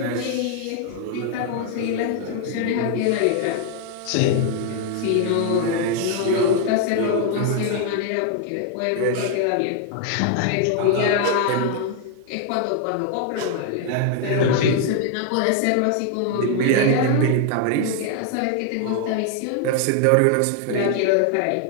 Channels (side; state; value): both; different; correlation 0.00